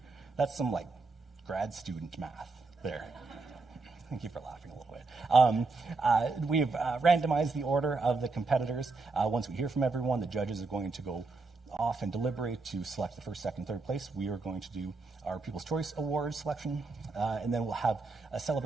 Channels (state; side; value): quieter; left; 3.9 dB